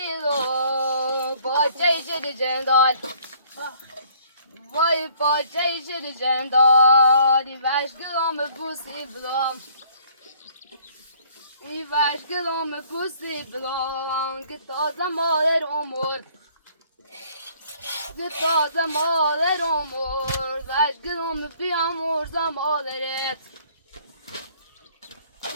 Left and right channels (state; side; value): inverted; both; correlation -0.59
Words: Bahçe içeri cendal. Vay bahçe içeri cendal. İveş gılom pusi blom. İveş gılom pusi blom. Gitaza maler omur. Gitaza maler omur. Veş gılom bi amor zamalet.